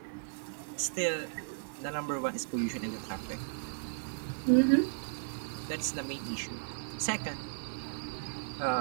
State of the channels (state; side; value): silent; left; digital silence